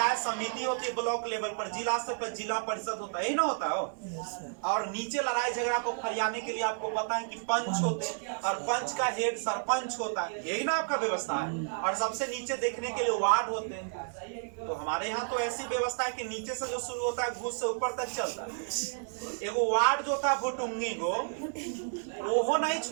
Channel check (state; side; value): silent; left; digital silence